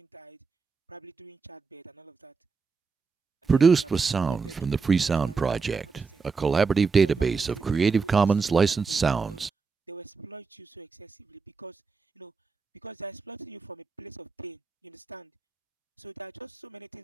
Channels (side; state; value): left; quieter; 4.9 dB